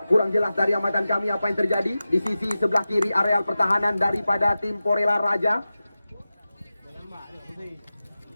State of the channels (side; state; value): both; inverted; correlation -0.94